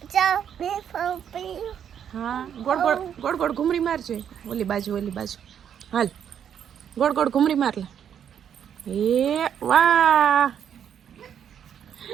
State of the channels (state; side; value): quieter; left; 8.7 dB